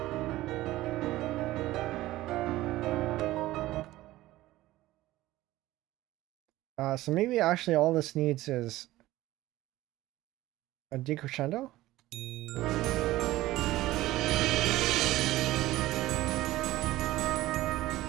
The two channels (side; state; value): left; quieter; 16.7 dB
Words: So maybe actually all this needs is a decrescendo?